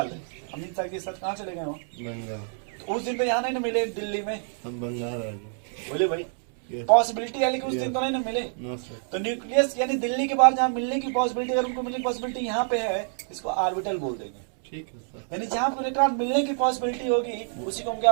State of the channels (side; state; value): left; silent; 60 dB below the other